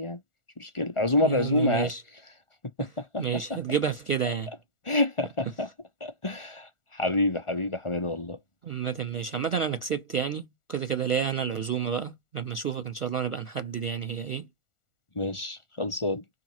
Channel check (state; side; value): late; right; 1.4 ms